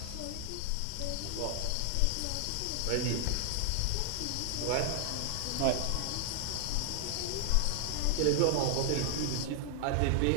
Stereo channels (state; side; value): different; both; correlation 0.00